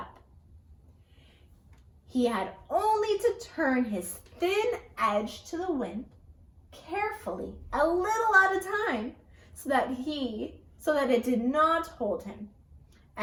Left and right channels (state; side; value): identical; both; correlation 1.00